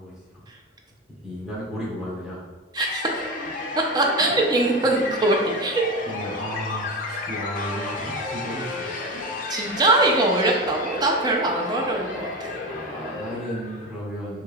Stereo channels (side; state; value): both; normal; correlation 0.21